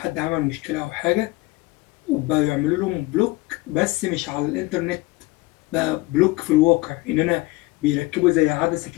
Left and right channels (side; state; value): right; quieter; 20.6 dB